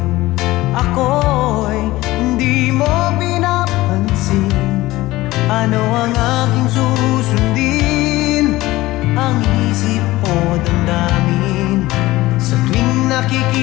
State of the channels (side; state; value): right; quieter; 18.2 dB